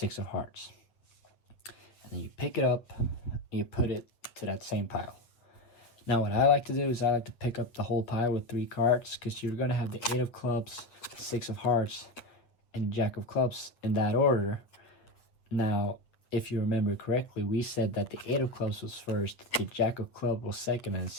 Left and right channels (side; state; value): right; late; 8.4 ms